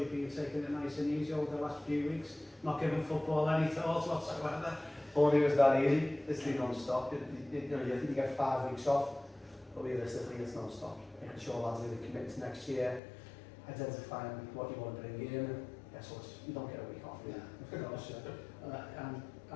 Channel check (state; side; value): drops out; right; at 13.0 s